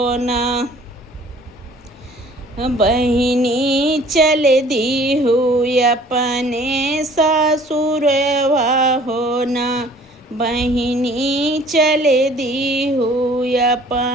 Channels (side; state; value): both; normal; correlation 0.53